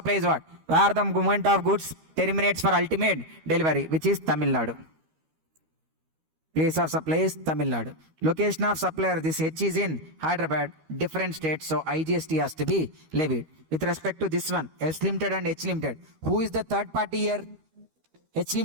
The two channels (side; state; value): left; late; 13 ms